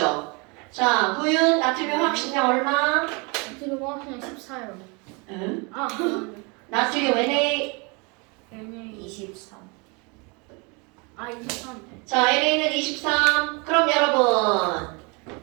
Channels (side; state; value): left; quieter; 30.3 dB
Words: 자, 구윤 나트륨 확신량 얼마? 지금 그냥 14요. 응? 아, 나트륨 Na. NA 23. 아 23. 자, NA는 23. 그럼 여러분,